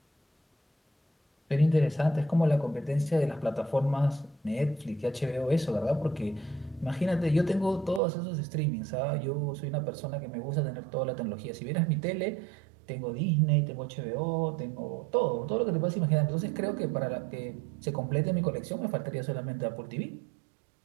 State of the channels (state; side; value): drops out; left; at 8.0 s